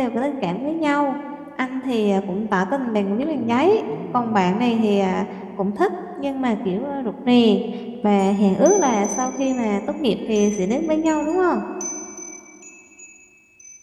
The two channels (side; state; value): both; identical; correlation 1.00